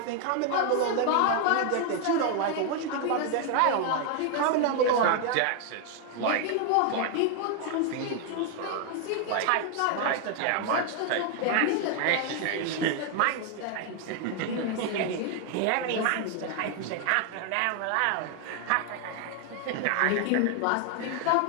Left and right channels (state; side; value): different; both; correlation 0.00